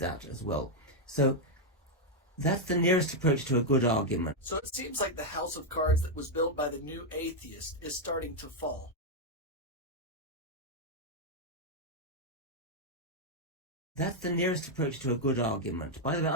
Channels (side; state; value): both; normal; correlation -0.01